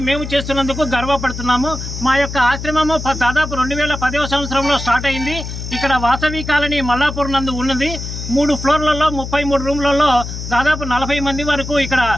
మేము చేస్తున్నందుకు గర్వపడుతున్నాము. మా యొక్క ఆశ్రమము దాదాపు 2010వ సంవత్సరంలో స్టార్ట్ అయింది. ఇక్కడ వాసవి కాలనీ మల్లాపూర్ నందు ఉన్నది. 3 ఫ్లోర్లలో 33 రూమ్లలో దాదాపు 40 మంది వరకు ఇక్కడ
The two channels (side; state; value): left; noise; hum, 8 dB below the sound